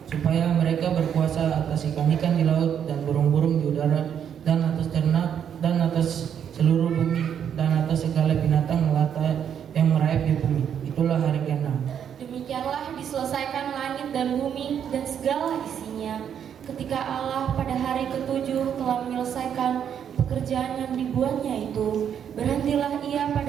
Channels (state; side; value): quieter; left; 8.6 dB